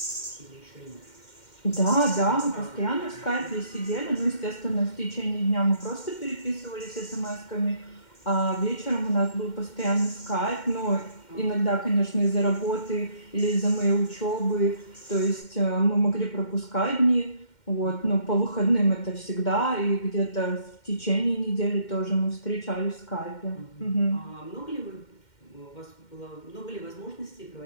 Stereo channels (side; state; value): right; late; 2.1 ms